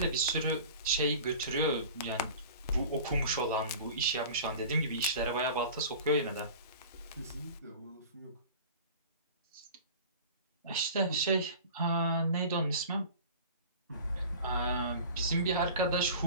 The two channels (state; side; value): inverted; both; correlation -0.39